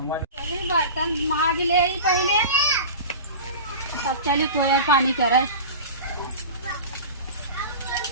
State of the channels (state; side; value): inverted; both; correlation -0.32